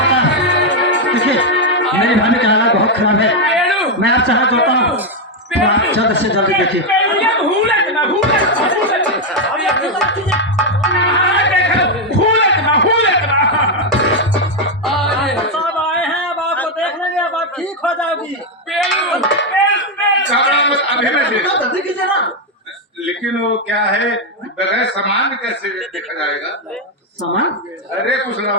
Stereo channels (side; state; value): both; normal; correlation 0.03